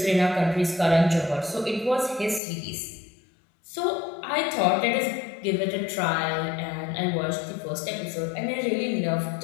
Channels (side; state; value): right; drops out; at 2.4 s